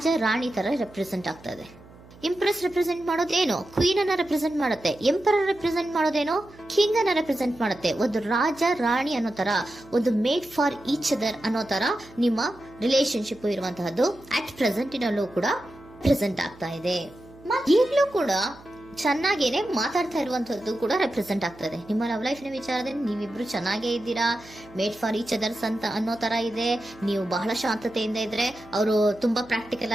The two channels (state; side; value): noise; right; hum, 22 dB below the sound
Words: ರಾಣಿ ತರ ರೆಪ್ರೆಸೆಂಟ್ ಆಗ್ತಾ ಇದೆ. ಇಂಪ್ರೆಸ್ ರೆಪ್ರೆಸೆಂಟ್ ಮಾಡೋದೇನೋ ಕ್ವೀನ್ ಅನ್ನ ರೆಪ್ರೆಸೆಂಟ್ ಮಾಡುತ್ತೆ, ಎಂಪರರ್ ರೆಪ್ರೆಸೆಂಟ್ ಮಾಡೋದೇನೋ ಕಿಂಗ್ ಅನ್ನ ರೆಪ್ರೆಸೆಂಟ್ ಮಾಡುತ್ತೆ. ಒಂದು ರಾಜ ರಾಣಿ ಅನ್ನೋ ತರ, ಒಂದು ಮೇಡ್ ಫಾರ್ ಈಚ್ ಅದರ್ ಅನ್ನೋ ತರ ನಿಮ್ಮ ರಿಲೇಶನ್ಶಿಪ್ ಇರುವಂತಹದ್ದು ಅಟ್ ಪ್ರೆಸೆಂಟಿನಲ್ಲೂ ಕೂಡ ಪ್ರೆಸೆಂಟ್ ಆಗ್ತಾ ಇದೆ. ಈಗಲೂ ಕೂಡ ಚೆನ್ನಾಗೇನೆ ಮಾತಾಡ್ತಾ ಇರುವಂತದ್ದು ಕೂಡ ರೆಪ್ರೆಸೆಂಟ್ ಆಗ್ತಾ ಇದೆ. ನಿಮ್ಮ ಲವ್ ಲೈಫ್ ನ ವಿಚಾರದಲ್ಲಿ ನೀವಿಬ್ರು ಚೆನ್ನಾಗೇ ಇದ್ದೀರಾ, ಮೇಡ್ ಫಾರ್ ಈಚ್ ಅದರ್ಸ್ ಅಂತ ಅನ್ನೋ ತರ ಇದೆ. ನೀವು ಬಹಳ ಶಾಂತತೆಯಿಂದ ಇದ್ರೆ ಅವರು ತುಂಬಾ ಪ್ರಾಕ್ಟಿಕಲ್